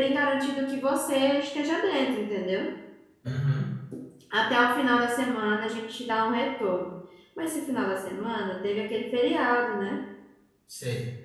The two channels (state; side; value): identical; both; correlation 1.00